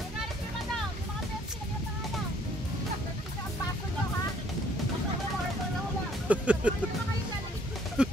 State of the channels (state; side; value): normal; both; correlation 0.62